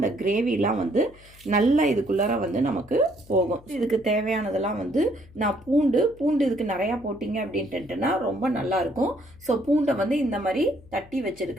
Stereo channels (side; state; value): left; noise; hum, 24 dB below the sound